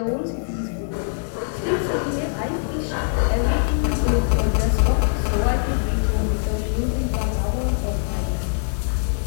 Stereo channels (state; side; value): silent; right; digital silence